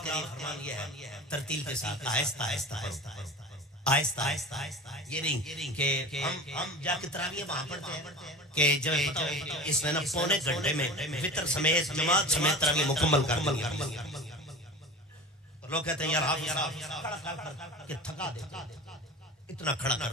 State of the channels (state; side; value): normal; both; correlation 0.34